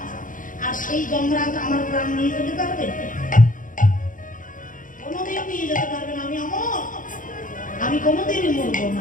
আর সেই যমরাজ আমার প্রাণ নিয়ে যেতে পারবে? কোনোদিন নিয়ে যেতে পারবে না। আমি অমর, আমি কোনোদিনই মরবো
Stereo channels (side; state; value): right; late; 0.39 ms